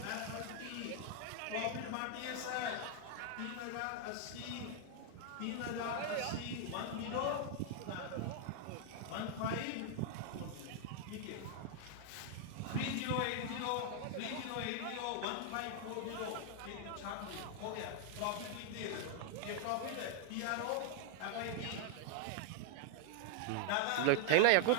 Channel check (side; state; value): both; different; correlation 0.00